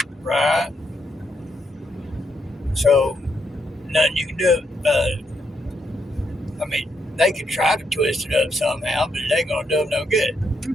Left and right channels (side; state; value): both; normal; correlation 0.78